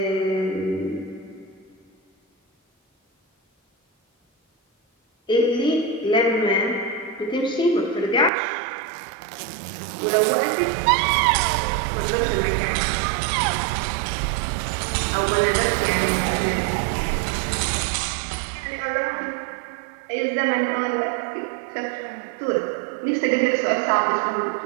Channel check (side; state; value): left; drops out; at 8.3 s